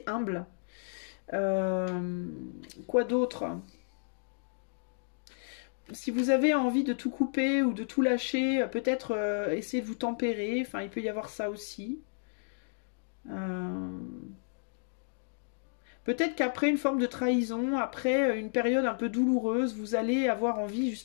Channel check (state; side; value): silent; right; digital silence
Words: humble. Quoi d'autre ? Si vous avez envie de tout couper ou de tout lâcher, peut-être essayer de vous tempérer. Enfin, il peut y avoir ça aussi. Peut-être qu'après une forme de trahison, après une période un peu douloureuse, vous allez avoir envie